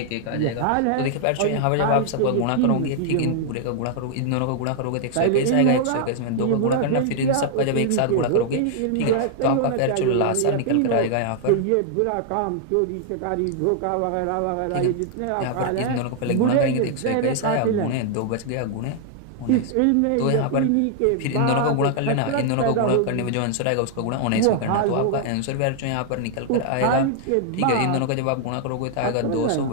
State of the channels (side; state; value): both; different; correlation 0.00